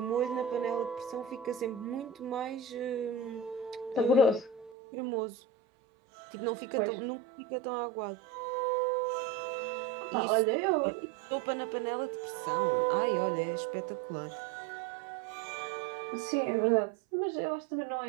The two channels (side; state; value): left; drops out; at 4.8 s